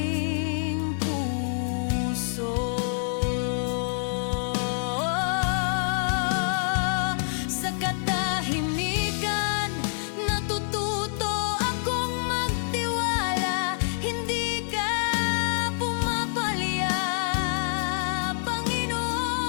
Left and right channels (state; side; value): silent; right; 58 dB below the other